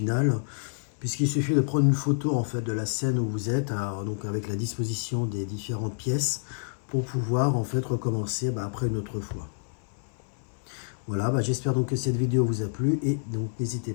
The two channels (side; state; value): right; silent; 59 dB below the other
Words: Puisqu'il suffit de prendre une photo en fait de la scène où vous êtes, donc avec la disposition des différentes pièces, pour pouvoir en fait recommencer après une autre fois. Voilà, j'espère donc que cette vidéo vous a plu et donc